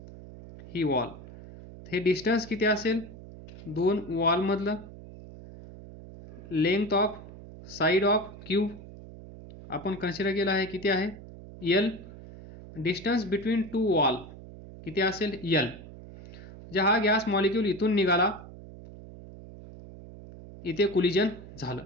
ही वॉल. हे डिस्टन्स किती असेल? दोन वॉल मधलं length of side of cube आपण कन्सिडर केला आहे, किती आहे? L. Distance between two wall किती असेल? एल. जे हा गॅस मॉलिक्यूल इथून निघाला, इथे कोलिजन झालं,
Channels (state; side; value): noise; right; hum, 16 dB below the sound